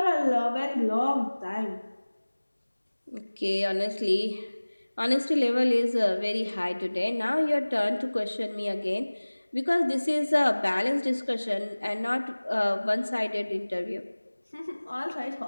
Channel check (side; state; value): both; inverted; correlation -1.00